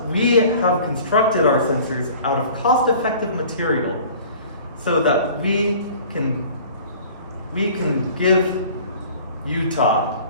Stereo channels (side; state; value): both; inverted; correlation -0.47